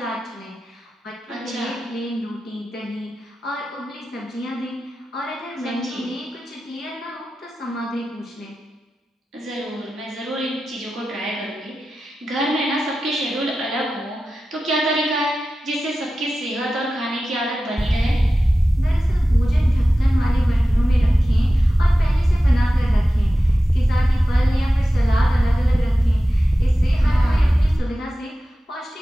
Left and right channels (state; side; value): normal; both; correlation 0.94